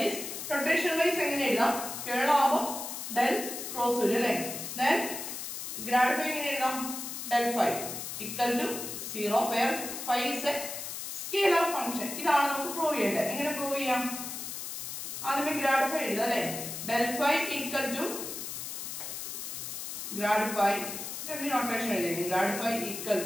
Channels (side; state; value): left; noise; hiss, 7 dB below the sound